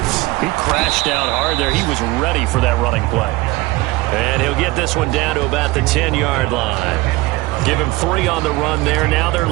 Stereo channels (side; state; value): left; quieter; 20.7 dB